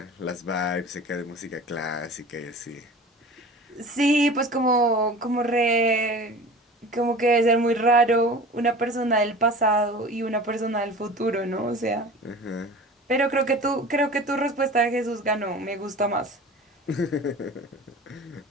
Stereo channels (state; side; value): normal; both; correlation 0.38